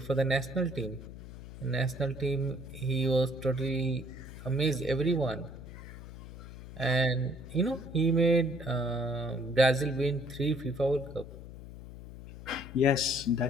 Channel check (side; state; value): left; noise; hum, 14 dB below the sound